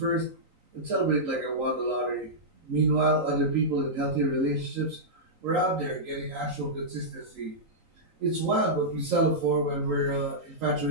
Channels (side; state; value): left; late; 3.9 ms